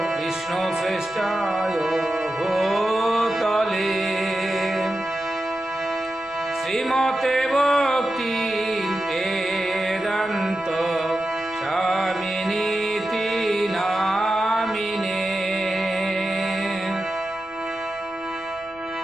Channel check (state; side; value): noise; left; rumble, 25 dB below the sound